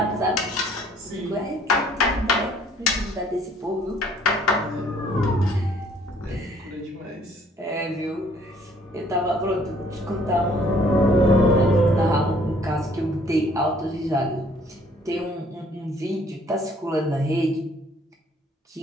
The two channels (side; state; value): both; normal; correlation 0.60